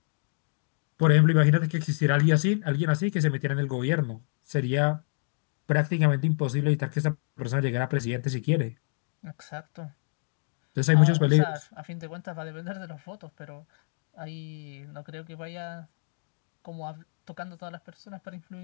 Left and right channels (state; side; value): silent; right; digital silence